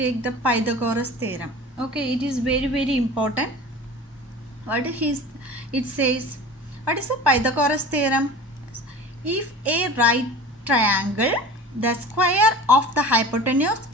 the Pythagoras theorem. Okay, it is very important. What is it says? What is the Pythagoras theorem? If a right triangle, the square of the hypotenuse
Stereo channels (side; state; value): both; normal; correlation 0.37